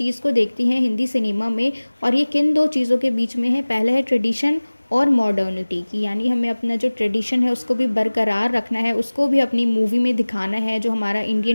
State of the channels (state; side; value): inverted; both; correlation -1.00